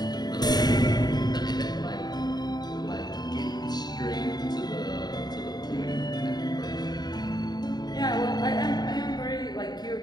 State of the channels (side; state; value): right; late; 0.20 ms